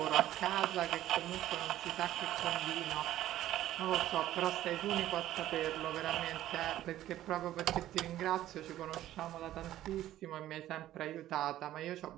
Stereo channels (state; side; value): quieter; left; 13.5 dB